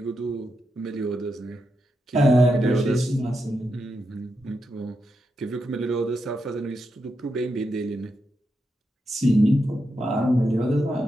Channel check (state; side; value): normal; both; correlation 0.85